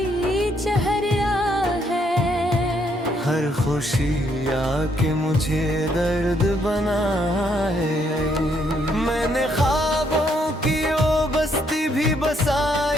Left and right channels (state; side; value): normal; both; correlation 0.72